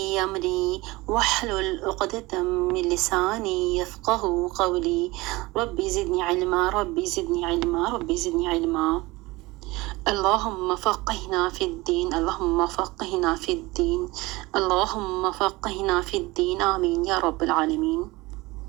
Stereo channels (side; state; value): left; quieter; 21.6 dB